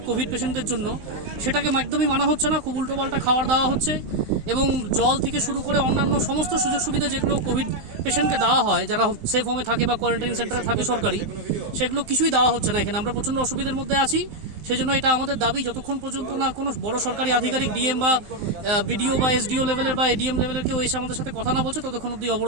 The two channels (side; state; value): left; late; 19 ms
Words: কোভিড পেশেন্টদের জন্য, সেটাকে একদমই মানা হচ্ছে না। খুব উল্টোপাল্টা খাবার দেওয়া হচ্ছে এবং জল থেকে শুরু করে অন্যান্য সমস্ত সুযোগ সুবিধা যেগুলো কোভিড পেশেন্টকে দেওয়া হয় যারা সেফ হোমে থাকে বা কোয়ারেন্টাইন সেন্টারে থাকে সরকারি, সেগুলো কিছুই দেওয়া হচ্ছে না এখানে। আমরা প্রচণ্ড অসুবিধার মধ্যে আছি। সেই জন্য এটা আমাদের দাবি, যতক্ষণ পর্যন্ত না কোনো বড় সরকারি আধিকারিক ডিএম বা বিডিও বা এসডিও লেভেলের বা এডিএম লেভেলের কেউ এসে আমাদের সাথে কথা না বলছে, ততক্ষণ অব্দি